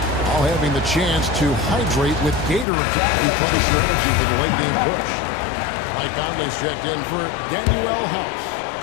while having the chance to hydrate with Gatorade to replenish your energy for the late game push. Mike Conley's checked in for Daniel House.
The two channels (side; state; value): right; drops out; at 2.7 s